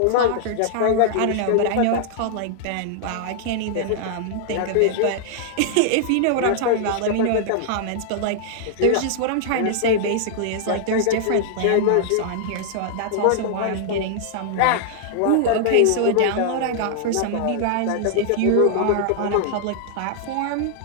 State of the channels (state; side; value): different; both; correlation -0.01